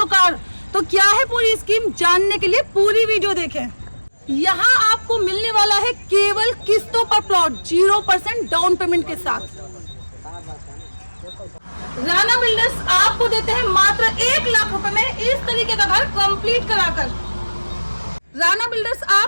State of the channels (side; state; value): both; inverted; correlation -1.00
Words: कार। तो क्या है पूरी स्कीम, जानने के लिए पूरी वीडियो देखें। यहाँ आपको मिलने वाला है केवल किस्तों पर प्लॉट 0% डाउन पेमेंट के साथ। राणा बिल्डर्स आपको देते हैं मात्र 1 लाख रुपए में इस तरीके का घर कंप्लीट कराकर। राणा बिल्डर्स